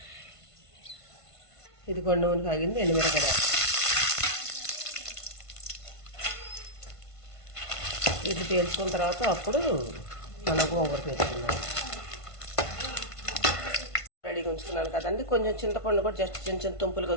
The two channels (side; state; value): right; late; 1.5 ms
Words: ఇది కొన్ని నూనె కాగింది, ఎండుమిరపకాయ ఇది తేల్చుకున్న తర్వాత అప్పుడు మనం గోంగూర వేసుకున్నాం. రెడీగా ఉంచుకున్నాను కదండి. కొంచెం చింతపండు కూడా జస్ట్ చిన్న చిన్న తుంపులు